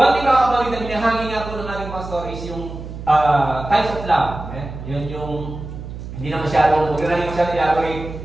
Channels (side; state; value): right; noise; hum, 10 dB below the sound